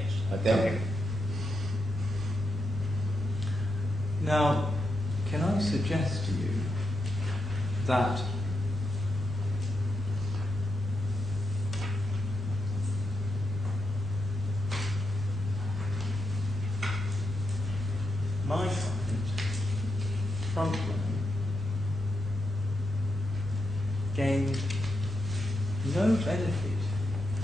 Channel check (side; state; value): both; normal; correlation 0.85